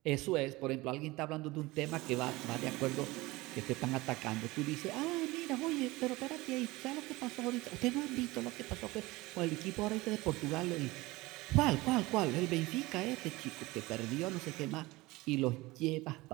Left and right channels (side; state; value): left; quieter; 20.9 dB